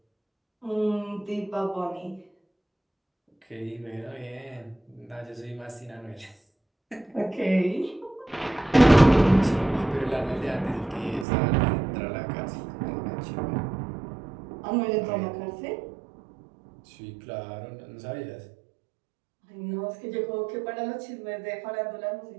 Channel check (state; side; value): drops out; left; at 11.2 s